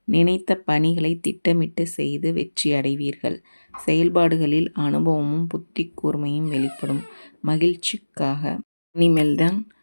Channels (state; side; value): inverted; both; correlation -1.00